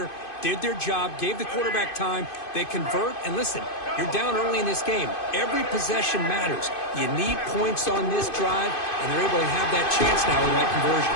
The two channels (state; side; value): late; right; 2.5 ms